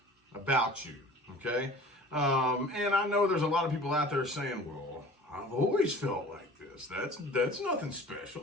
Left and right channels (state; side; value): normal; both; correlation 0.44